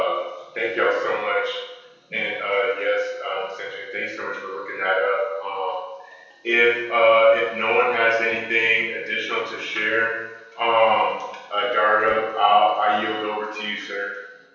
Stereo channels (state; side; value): identical; both; correlation 1.00